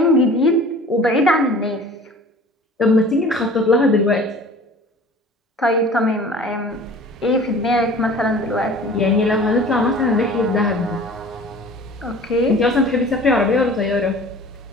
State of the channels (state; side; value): normal; both; correlation 0.45